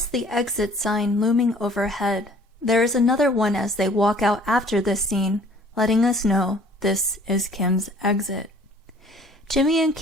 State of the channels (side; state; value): both; normal; correlation 0.54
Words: the exit sign looming overhead. There is another one as they walk out after this scene, letting us know this is Kim's exit. Jimmy and